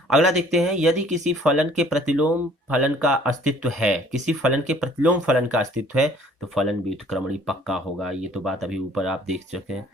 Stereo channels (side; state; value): both; normal; correlation 0.55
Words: अगला देखते हैं, यदि किसी फलन के प्रतिलोम फलन का अस्तित्व है, किसी फलन के प्रतिलोम फलन का अस्तित्व है, तो फलन व्युत्क्रमणीय पक्का होगा। ये तो बात अभी ऊपर आप देख चुके हैं।